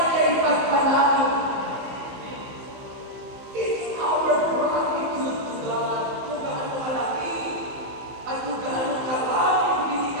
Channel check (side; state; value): left; late; 15 ms